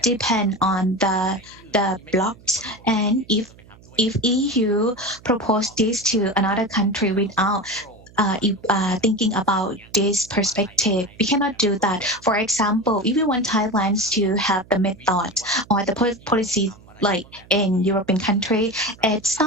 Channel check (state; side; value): noise; right; hum, 24 dB below the sound